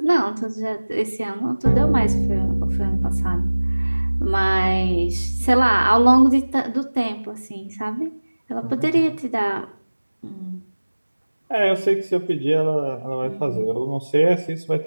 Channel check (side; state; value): both; inverted; correlation -1.00